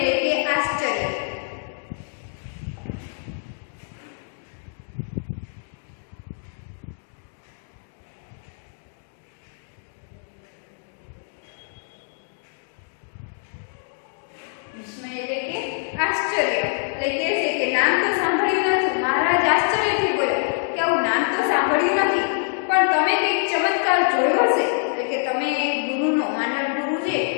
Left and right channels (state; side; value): silent; right; 62 dB below the other